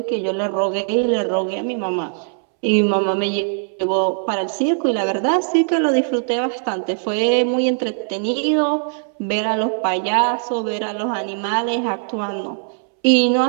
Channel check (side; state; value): left; silent; 66 dB below the other